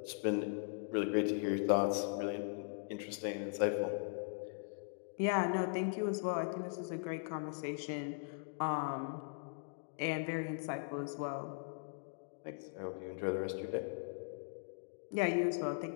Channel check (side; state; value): right; silent; digital silence